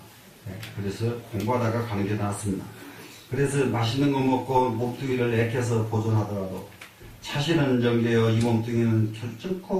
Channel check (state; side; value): identical; both; correlation 1.00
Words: 네? 그래서 공부하다가 가는 게 낫습니다. 그래서 맛있는 거 먹고 몸뚱이를 애껴서 보존하더라도 차시는 정되어 이 몸뚱이는